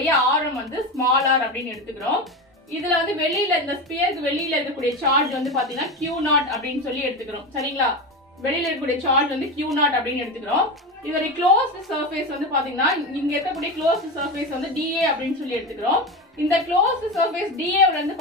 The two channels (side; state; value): both; normal; correlation 0.20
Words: ஆரம் வந்து ஸ்மால் r அப்படின்னு எடுத்துக்கிறோம். இதுல வந்து வெளியில இந்த ஸ்பியருக்கு வெளியில இருக்கக்கூடிய சார்ஜ் வந்து பாத்தீங்கன்னா Q0 அப்படின்னு சொல்லி எடுத்துக்கிறோம். சரிங்களா? வெளியில இருக்கக்கூடிய சார்ஜ் வந்து Q0 அப்படின்னு எடுத்துக்கிறோம். இதோட க்ளோஸ்ட் சர்ஃபேஸ் வந்து பாத்தீங்கன்னா இங்க இருக்கக்கூடிய க்ளோஸ்ட் சர்ஃபேஸ் வந்து dA அப்படின்னு சொல்லி எடுத்துக்கிறோம். இந்த க்ளோஸ்ட் சர்ஃபேஸ் dA ல